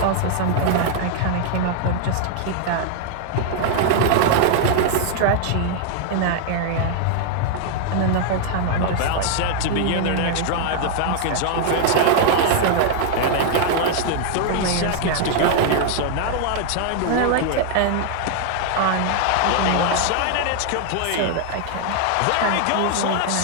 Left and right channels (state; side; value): different; both; correlation 0.00